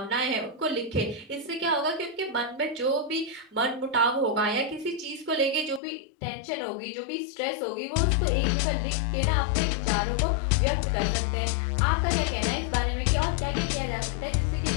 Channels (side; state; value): right; drops out; at 5.8 s